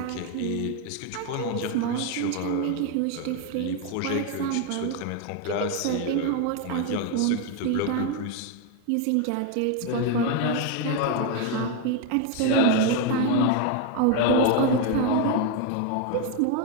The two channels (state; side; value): different; both; correlation 0.01